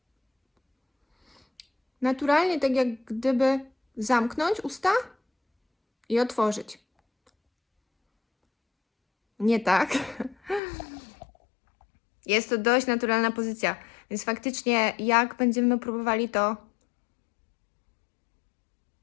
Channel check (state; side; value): drops out; right; at 10.6 s